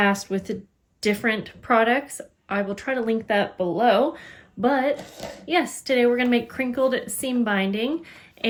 with different products, I will try to link that below. But yes, today we're going to make crinkled seam binding,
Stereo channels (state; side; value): identical; both; correlation 1.00